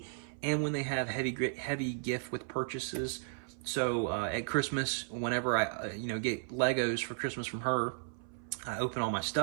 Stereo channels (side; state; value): left; silent; 55 dB below the other